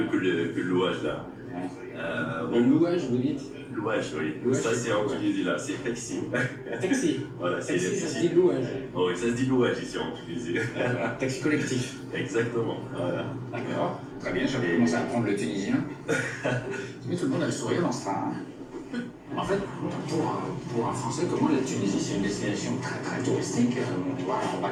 que le louage là. Le louage, vous dites? Louage, oui. Louage, Ça, c'est c'est en quoi? Tunisie là. C'est taxi. Taxi. Voilà, c'est Taxi, ça se dit louage. Oh, oui, ça se dit louage ici en Tunisie. Taxi collectif. Exactement. Voilà. D'accord. Très bien, j'avais commencé à apprendre le tunisien. Mais tout le monde a le sourire dans ce train. En fait, pour un Français, comment la Tunisie, c'est une destination très touristique. On va en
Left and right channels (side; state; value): both; identical; correlation 1.00